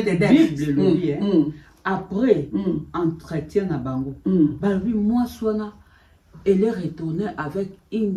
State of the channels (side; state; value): both; identical; correlation 1.00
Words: des Bible après entretien à bango. Bah lui moi soina elle est retournée avec